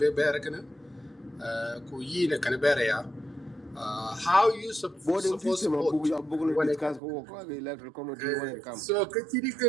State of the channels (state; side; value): drops out; left; at 7.0 s